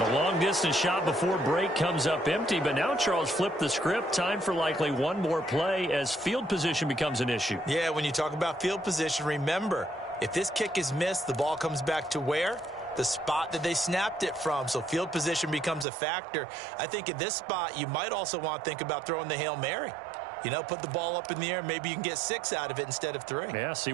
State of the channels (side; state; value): left; drops out; at 15.9 s